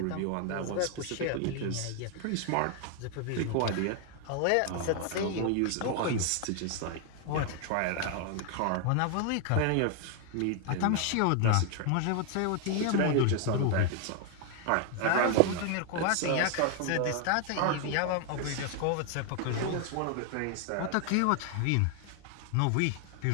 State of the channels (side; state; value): both; different; correlation 0.00